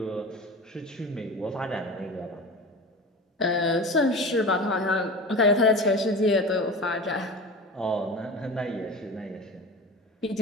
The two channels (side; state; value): both; normal; correlation 0.33